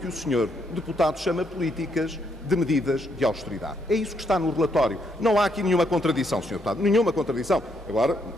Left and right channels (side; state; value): both; normal; correlation 0.74